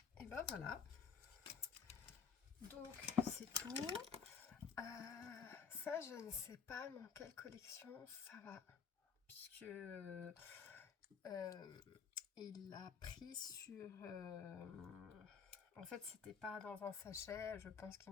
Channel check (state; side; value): quieter; right; 6.3 dB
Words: Et ben voilà. Donc c'est tout. Ça, je ne sais pas dans quelle collection ça va, puisque il l'a pris sur... en fait, c'était pas dans un sachet, je pense